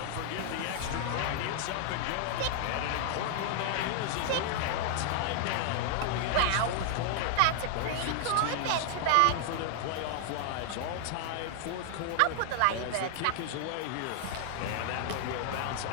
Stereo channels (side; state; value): both; different; correlation 0.00